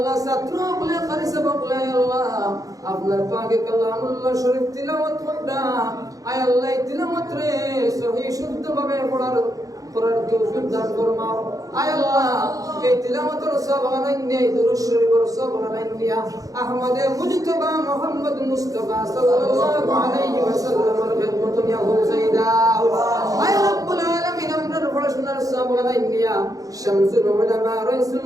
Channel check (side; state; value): left; late; 0.17 ms